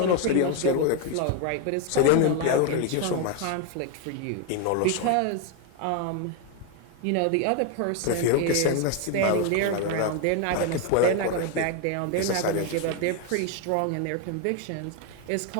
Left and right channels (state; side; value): different; both; correlation 0.01